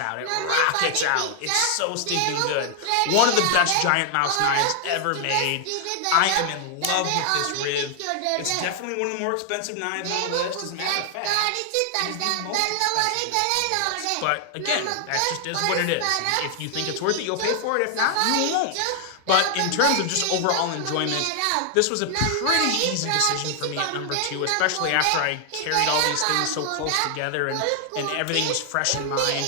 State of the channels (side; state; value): both; different; correlation 0.00